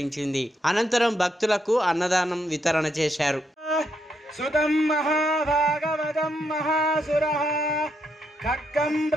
అనంతరం భక్తులకు అన్నదానం వితరణ చేశారు. సుతం మహాభాగవతం మహాసురః ఖడ్గం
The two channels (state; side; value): normal; both; correlation 0.78